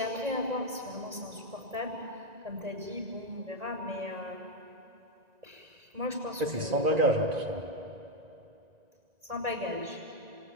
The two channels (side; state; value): left; late; 1.9 ms